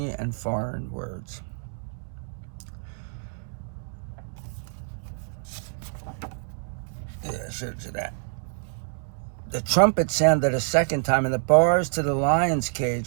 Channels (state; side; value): silent; left; digital silence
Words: and foreign words. Yeah, I showed you that. The trumpet sounded a second time, and the bars to the lion's